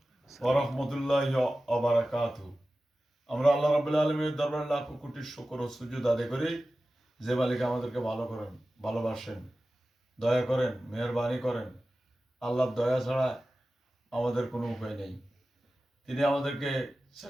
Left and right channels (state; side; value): normal; both; correlation 0.95